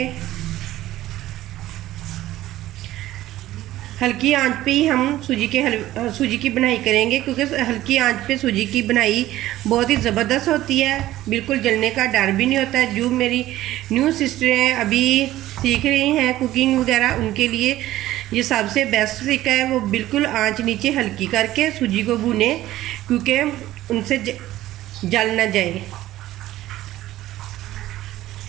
हल्की आंच पे ही हम सूजी की बनाई करेंगे, क्योंकि हल्की आंच पे सूजी की बनाई बहुत ही ज़बरदस्त होती है। बिल्कुल जलने का डर भी नहीं होता है। जो मेरी न्यू सिस्टर हैं, अभी सीख रही हैं कुकिंग वगैरह, उनके लिए ये सबसे बेस्ट तरीका है। वो बिल्कुल आंच नीचे हल्की करके सूजी को भूने, क्योंकि उनसे जल ना जाए।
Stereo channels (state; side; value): quieter; left; 15.0 dB